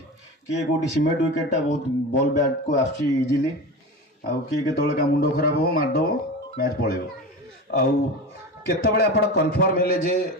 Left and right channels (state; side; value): normal; both; correlation 0.28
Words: किए कोटी सीमेंट विकेट टा बहुत बॉल बैट को आसी इजीली आ किए केतले का मुंडो खराब हो मार दो मैच पळेबो आउ केतबेले आपण कंफर्म हेले जे